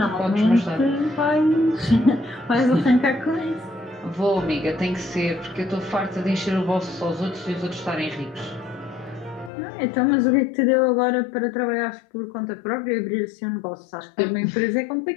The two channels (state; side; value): drops out; right; at 9.5 s